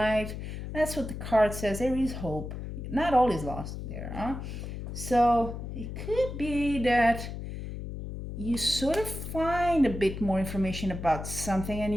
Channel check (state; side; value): noise; left; hum, 7 dB below the sound